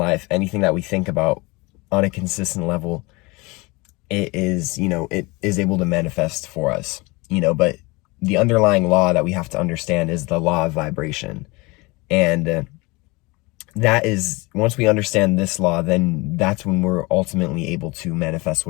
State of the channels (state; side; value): quieter; right; 24.8 dB